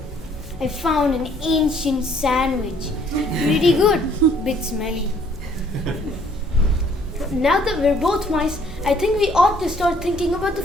I found an ancient sandwich. Pretty good, bit smelly. Now that we're both mice, I think we ought to start thinking about the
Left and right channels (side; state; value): both; normal; correlation 0.62